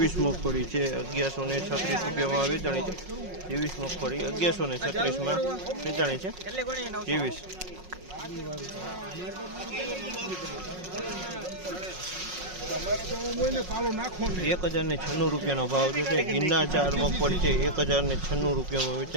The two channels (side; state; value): left; late; 5.5 ms